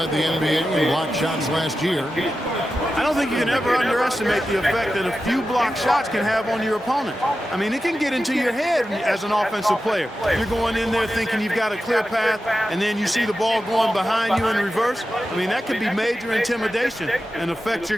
the NBA in block shots last year. I don't think you can ever underestimate the effect that a few block shots can have on your opponent. I mean, it can get into your head as an offensive player. You're going in there thinking you've got a clear path, and then you see the ball going behind you in reverse. I mean, that could be major intimidation and affect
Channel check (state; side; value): normal; both; correlation 0.92